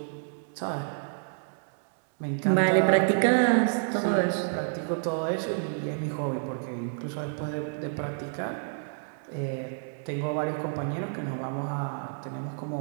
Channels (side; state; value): left; silent; digital silence